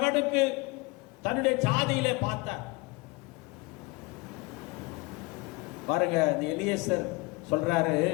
தன்னுடைய ஜாதியிலே பார்த்தார். பாருங்க, இந்த எலியேசர் சொல்றாரு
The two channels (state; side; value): quieter; right; 24.8 dB